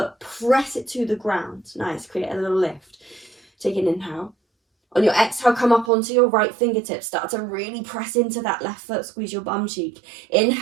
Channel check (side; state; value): left; drops out; at 5.9 s